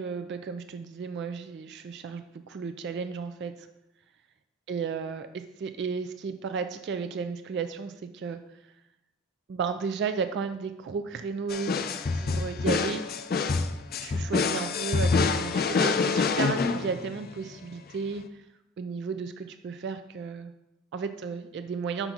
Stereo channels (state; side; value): normal; both; correlation 0.40